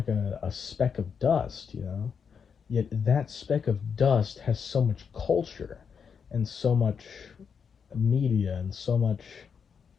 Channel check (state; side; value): quieter; right; 6.5 dB